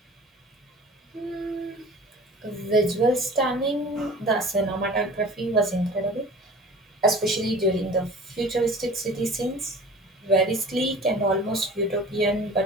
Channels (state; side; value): normal; both; correlation 0.42